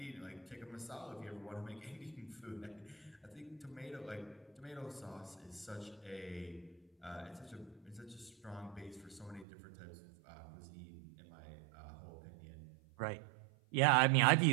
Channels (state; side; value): drops out; left; at 9.5 s